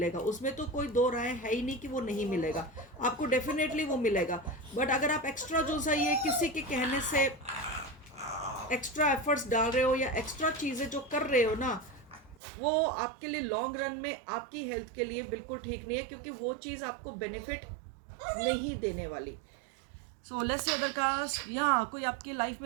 उसमें तो कोई दो राय है ही नहीं कि वो नहीं मिलेगा, आपको डेफिनेटली वो मिलेगा। बट अगर आप एक्स्ट्रा जो सा ये किसी के कहने से एक्स्ट्रा एफर्ट्स डाल रहे हो या एक्स्ट्रा चीज़ें जो कर रहे हो ना, वो आपके लिए लॉन्ग रन में आपकी हेल्थ के लिए बिल्कुल ठीक नहीं है, क्योंकि वो चीज़ आपको बेनिफिट नहीं देने वाली। So let's say other caste, या कोई आपकी लाइफ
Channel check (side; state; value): left; drops out; at 12.4 s